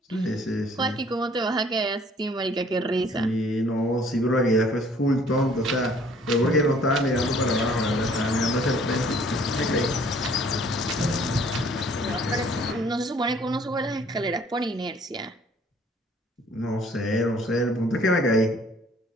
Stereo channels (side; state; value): both; normal; correlation 0.57